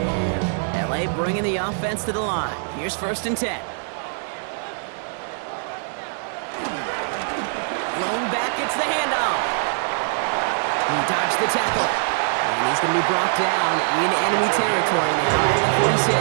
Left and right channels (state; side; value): silent; left; digital silence